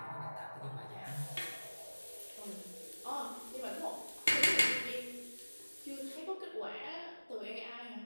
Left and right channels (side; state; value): both; inverted; correlation -1.00